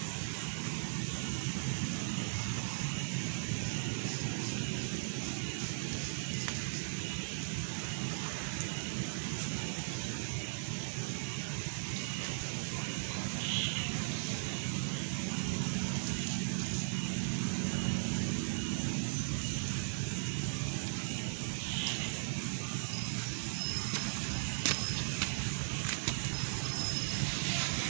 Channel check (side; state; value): left; silent; digital silence